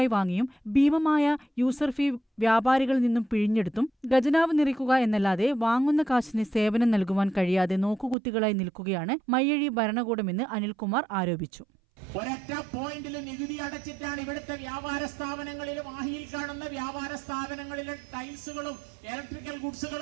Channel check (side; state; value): left; drops out; at 8.2 s